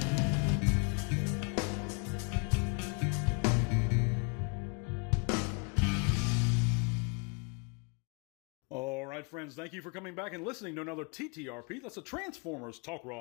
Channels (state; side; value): quieter; right; 35.8 dB